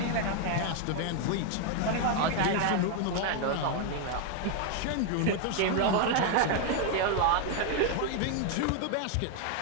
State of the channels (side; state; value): both; different; correlation 0.01